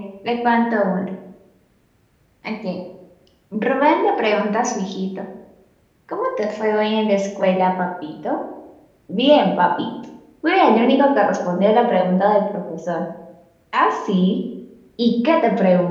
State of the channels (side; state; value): both; identical; correlation 1.00